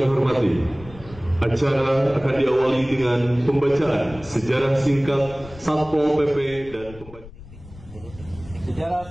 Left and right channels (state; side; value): noise; left; rumble, 18 dB below the sound